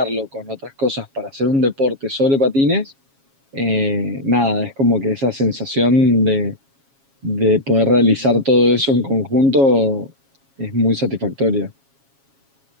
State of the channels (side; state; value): left; late; 7.3 ms